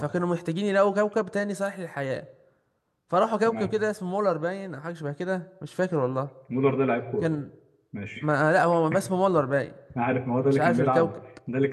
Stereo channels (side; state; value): both; identical; correlation 1.00